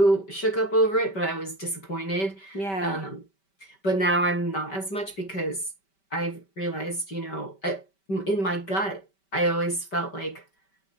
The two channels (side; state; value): right; late; 5.2 ms